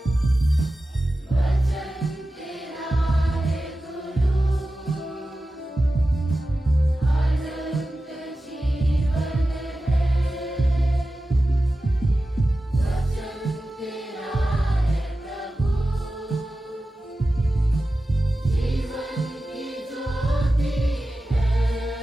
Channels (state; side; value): normal; both; correlation 0.94